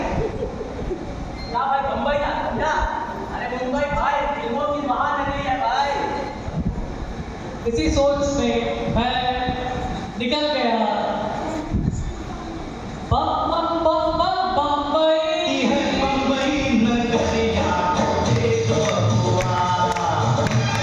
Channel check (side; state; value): both; identical; correlation 1.00